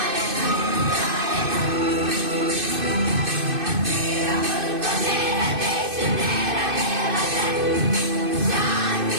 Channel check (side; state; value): left; late; 2.6 ms